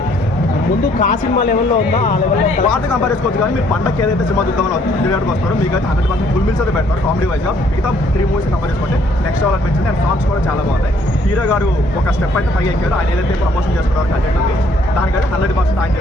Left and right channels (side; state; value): both; normal; correlation 0.64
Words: ముందు కా సినిమా లెవెల్లో ఉందా ఆ లెవెల్లో పాట కంపేర్ చేసుకోవచ్చు. కానీ మీరు పండగకి ఏదైతే సినిమా చూద్దామని థియేటర్కి వస్తారో మీకు అయితే 100% ఫుల్ మీల్స్ అయితే పెడతారు కామెడీ వైజ్గా. మిగతా 3 మూవీస్ కంపేర్ చేసుకుంటే నెక్స్ట్ లెవెల్ అనిపించింది. అండ్ సాంగ్స్ కూడా చాలా బాగున్నాయి. హీరో గారు ఒక స్టెప్ అయితే పైకి ఎక్కారు. ఆయన ఏదైతే ప్రమోషన్ చేసుకున్నారు కంటెంట్ ఉంది దానికైతే 100% ఆయన